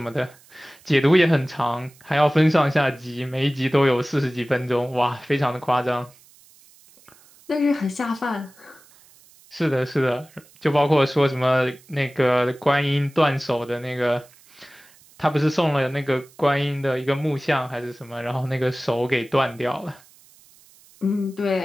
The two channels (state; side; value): noise; right; hiss, 27 dB below the sound